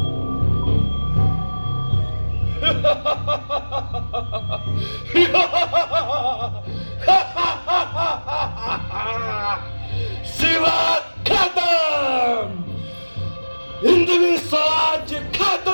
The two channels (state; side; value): inverted; both; correlation -1.00